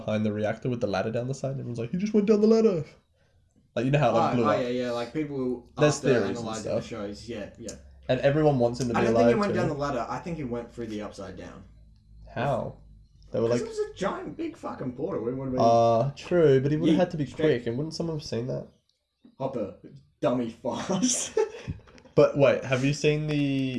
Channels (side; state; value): both; identical; correlation 1.00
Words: the reactor with the ladder down the side? And everyone's like, he just went down the ladder. Like, you know how it like, blew up. Yeah. Like people There's after theories and analyzing the stuff. shows. Yeah. And everyone wants him to be I don't alive think he went too. down the ladder. I think he went through the upside down. How? They were Because like, it was a giant, big fucking portal. It would have been true, but he would have Yeah, had to be straight. quick, and wouldn't someone have seen that? Hopper, dummy fast. But wait, have you seen